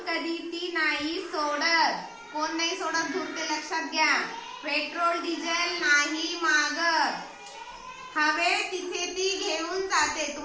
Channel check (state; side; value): identical; both; correlation 1.00